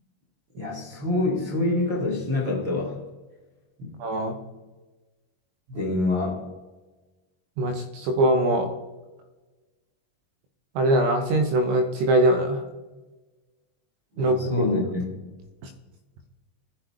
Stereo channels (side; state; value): left; late; 22 ms